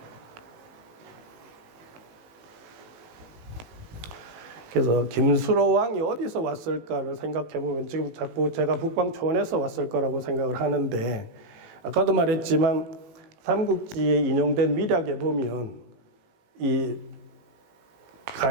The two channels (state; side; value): late; left; 18 ms